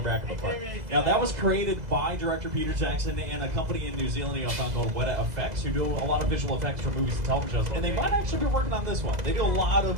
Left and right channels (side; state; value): left; late; 2.0 ms